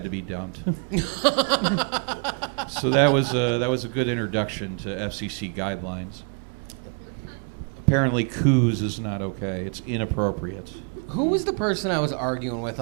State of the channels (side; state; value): left; quieter; 38.7 dB